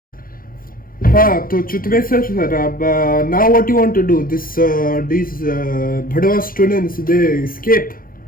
तो Chutmeswar sir, now what you want to do? These Bhadwa students, they escape.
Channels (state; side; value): late; right; 0.42 ms